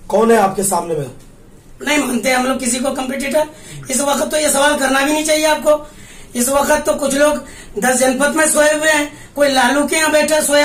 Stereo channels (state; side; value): identical; both; correlation 1.00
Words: कौन है आपके सामने में? नहीं मानते हम लोग किसी को कंपटीटर। इस वक्त तो ये सवाल करना भी नहीं चाहिए आपको। इस वक्त तो कुछ लोग 10 जनपद में सोए हुए हैं, कोई लालू के यहाँ बैठा